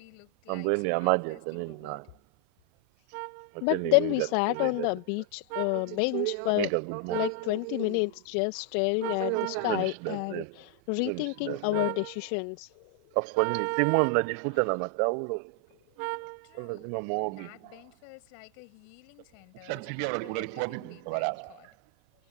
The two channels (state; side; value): different; both; correlation 0.00